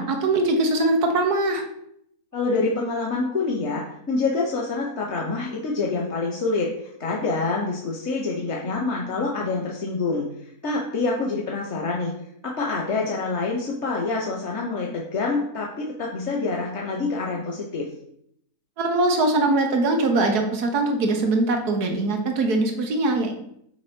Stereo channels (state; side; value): late; left; 4.7 ms